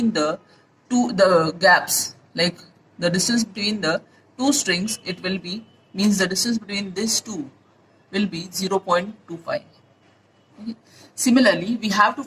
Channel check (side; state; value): both; identical; correlation 1.00